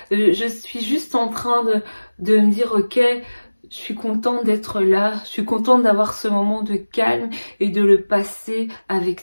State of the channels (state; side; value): inverted; both; correlation -1.00